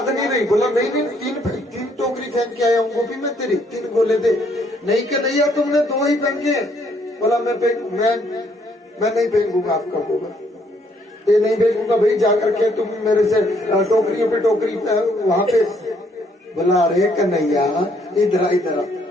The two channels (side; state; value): both; normal; correlation 0.68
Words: नहीं रही। बोला नहीं तीन टोकरी फेंक के आया हूँ गोपी मैं तेरी, 3 गोले दे। नहीं कन्हैया तुमने 2 ही फेंके। बोला मैं नहीं फेंकूंगा आपका गोबर, ये नहीं फेंकूंगा भाई, जाकर के तुम मेरे से टोकरियों पे टोकरी वहां पे। बोला अरे कन्हैया इधर।